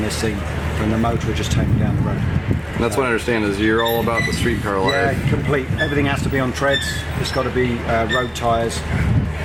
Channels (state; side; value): identical; both; correlation 1.00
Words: this thing and the motor will just take me down the road. And that's what I understand is you're all about the street car life. Yeah, complete. Everything has to be on treads. It's got to be road tyres,